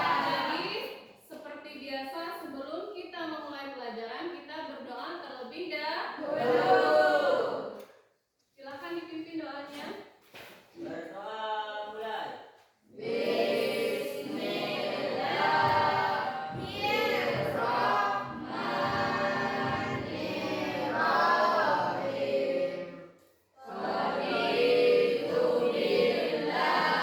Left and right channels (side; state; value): both; identical; correlation 1.00